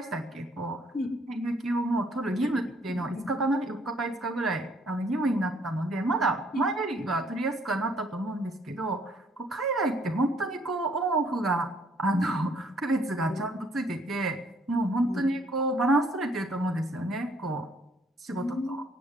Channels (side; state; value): both; normal; correlation 0.64